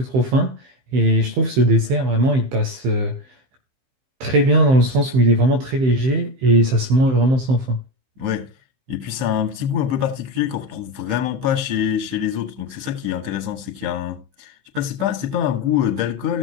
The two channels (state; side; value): late; left; 15 ms